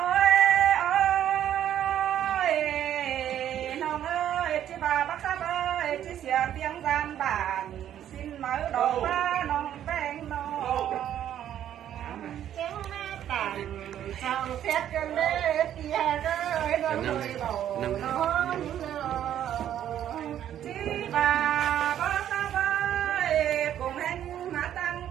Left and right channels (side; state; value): left; quieter; 10.8 dB